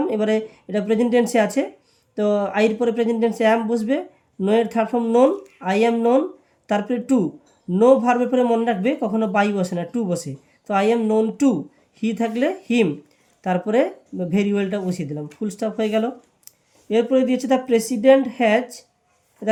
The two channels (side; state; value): both; identical; correlation 1.00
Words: এবারে এটা প্রেজেন্ট টেন্সে আছে, তো আইয়ের পরে প্রেজেন্ট টেন্সে অ্যাম বসবে, নো এর third form known, I am known. তারপরে টু, নো ভার্বের পরে মনে রাখবে কখনো বাই বসে না, টু বসে, তো আই অ্যাম নোন টু, হি থাকলে হিম, তারপরে ভেরি ওয়েলটা বসিয়ে দিলাম, ফুল স্টপ হয়ে গেল। এরপরে দিয়েছে the president has,